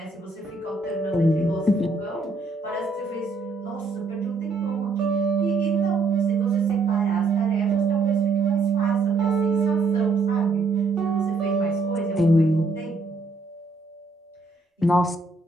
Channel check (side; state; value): left; quieter; 3.6 dB